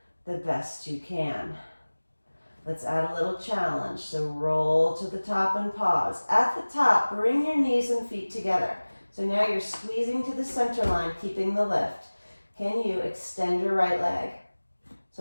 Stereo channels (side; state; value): both; inverted; correlation -1.00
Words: the best you can. Let's add a little challenge. So roll to the top and pause. At the top, bring your knees and feet together. So now you're squeezing to the center line, keeping the lift. Can you extend your right leg?